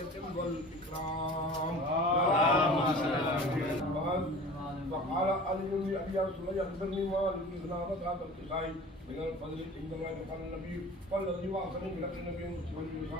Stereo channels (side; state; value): both; normal; correlation 0.41